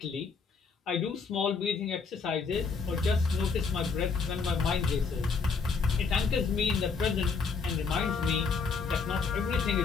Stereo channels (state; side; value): quieter; right; 5.1 dB